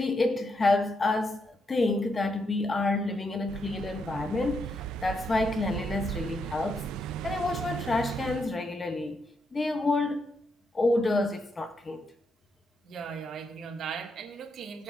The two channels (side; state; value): both; normal; correlation 0.80